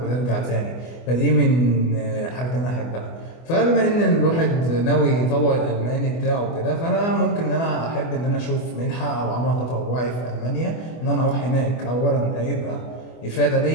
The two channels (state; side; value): late; right; 24 ms